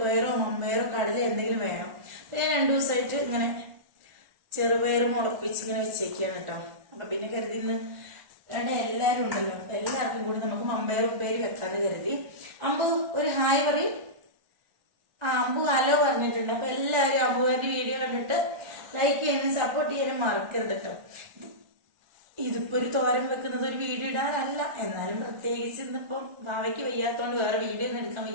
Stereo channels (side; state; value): left; late; 1.4 ms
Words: മമ്പയറോ കടല എന്തെങ്കിലും വേണം. ഞാൻ 2 ദിവസമായിട്ട് ഇങ്ങനെ ചെറുപയർ മുളപ്പിച്ച് ഇങ്ങനെ വെച്ചേക്കാണ് കേട്ടോ. അപ്പൊ പിന്നെ കരുതി ഇന്ന് എല്ലാരും ഉണ്ടല്ലോ, അപ്പൊ എല്ലാവർക്കും കൂടി നമുക്ക് മമ്പയർ ഉപ്പേരി വെക്കാന്ന് കരുതി. അമ്പു ഒരു ഹായ് പറയും. അമ്പു ഹലോ പറഞ്ഞിട്ടുണ്ട്. അപ്പൊ എല്ലാവരും അമ്പുവിന്റെ വീഡിയോ കണ്ടിട്ട് ലൈക്ക് ചെയ്യാനും സപ്പോർട്ട് ചെയ്യാനും മറക്കരുത് കേട്ടോ. ഇതിപ്പോ ഒരു തോരൻ വെക്കുന്നത് ഒരു വീഡിയോ ഇടാനല്ല, എന്നാലും പ്രത്യേകിച്ച് ഇന്നിപ്പം വാവയ്ക്ക് വയ്യാത്തോണ്ട് വേറെ വീഡിയോ ഒന്നും എടുക്കാൻ